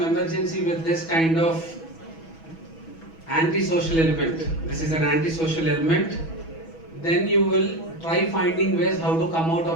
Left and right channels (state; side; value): late; right; 6.1 ms